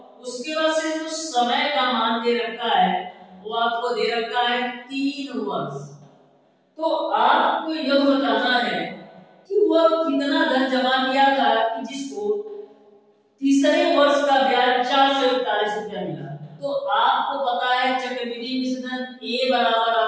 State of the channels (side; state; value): both; identical; correlation 1.00